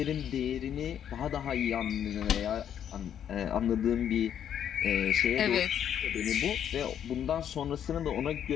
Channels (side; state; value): right; quieter; 9.4 dB